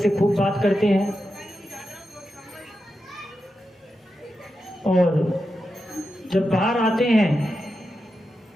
खूब बात करते हैं और जब बाहर आते हैं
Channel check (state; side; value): normal; both; correlation 0.89